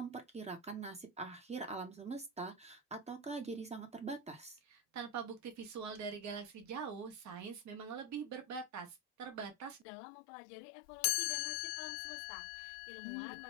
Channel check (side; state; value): right; drops out; at 9.9 s